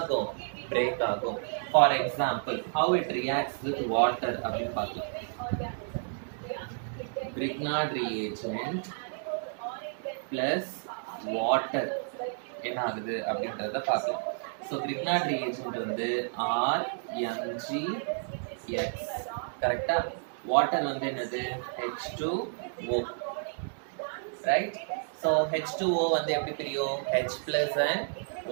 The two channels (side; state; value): left; silent; digital silence